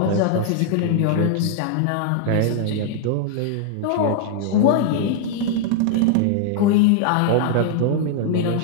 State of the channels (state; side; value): different; both; correlation 0.00